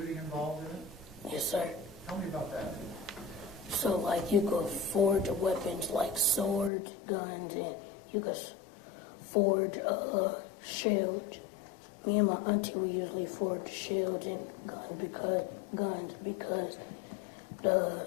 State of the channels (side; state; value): right; drops out; at 6.7 s